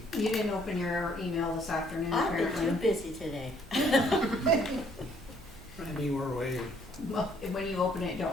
You didn't open your email this afternoon, I've been too apparently. busy today. we're way, Well, when you open it,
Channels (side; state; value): both; normal; correlation 0.64